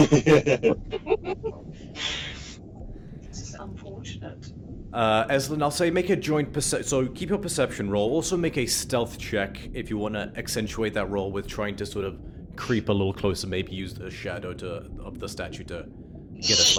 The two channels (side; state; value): both; identical; correlation 1.00